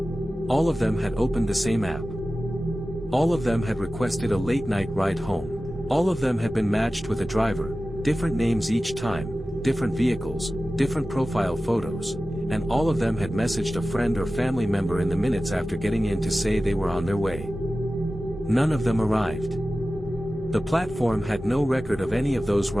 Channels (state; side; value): normal; both; correlation 0.95